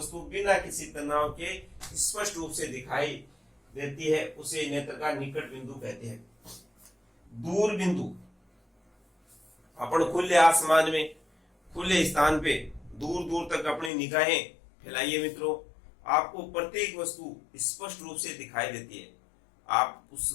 बिना किसी तनाव के स्पष्ट रूप से दिखाई देती है उसे नेत्र का निकट बिंदु कहते हैं। दूर बिंदु, अपन खुले आसमान में खुले स्थान पे दूर दूर तक अपनी निगाहें फैलाइए मित्रों, आपको प्रत्येक वस्तु स्पष्ट रूप से दिखाई देती है, आप उस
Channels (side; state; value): right; drops out; at 13.9 s